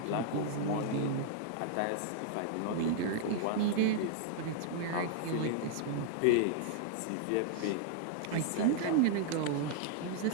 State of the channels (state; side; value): different; both; correlation -0.01